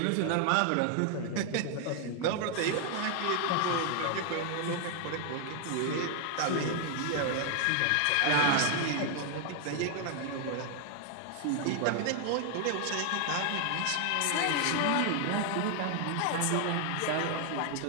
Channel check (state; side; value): different; both; correlation 0.00